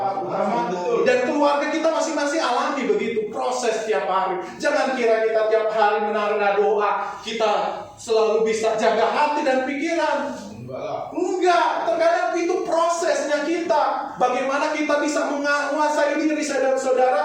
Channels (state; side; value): identical; both; correlation 1.00